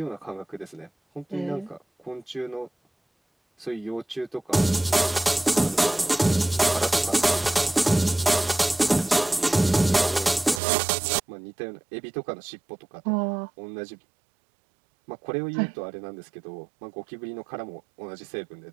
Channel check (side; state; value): left; drops out; at 10.6 s